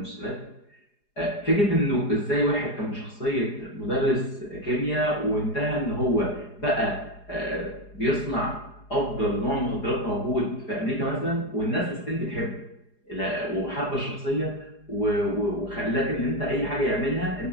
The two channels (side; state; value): right; late; 4.8 ms